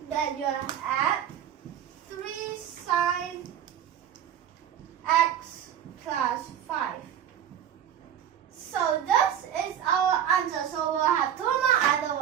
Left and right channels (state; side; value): quieter; left; 9.8 dB